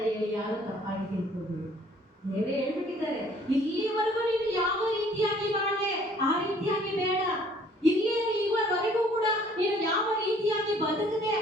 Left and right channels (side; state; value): both; normal; correlation 0.58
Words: ಹೇಳಿ ಯಾರು ತಪ್ಪಾಗಿ ತಿಳ್ಕೊಂಡು ದೇವರೇ ಹೇಳ್ಬಿಟ್ಟಿದ್ದಾರೆ, ಇಲ್ಲಿವರೆಗೂ ನೀನು ಯಾವ ರೀತಿಯಾಗಿ ಬಾಳೆ ಆ ರೀತಿಯಾಗಿ ಬೇಡ. ಇಲ್ಲಿವರೆಗೂ ಕೂಡ ನೀನು ಯಾವ ರೀತಿಯಾಗಿ ಬದುಕದೆ